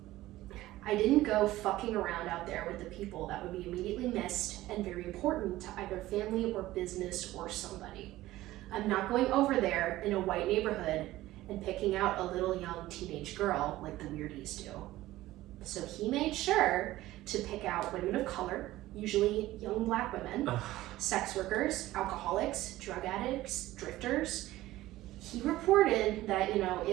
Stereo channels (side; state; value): left; quieter; 16.3 dB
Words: "I didn't go fucking around out there with the people that would be immediately missed and very important to either family or business or somebody. I'm not going over there in a white neighborhood and picking out a little young teenage girl like the weirdies do." So he made sure to pick out women of color, usually young black women, sex workers, alcoholics, drug addicts, drifters. He reported that, you know,